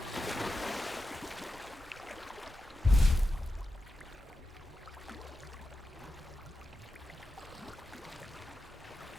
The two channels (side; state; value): both; normal; correlation 0.90